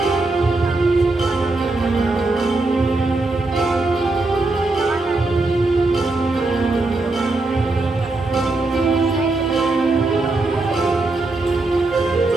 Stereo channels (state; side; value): quieter; left; 3.1 dB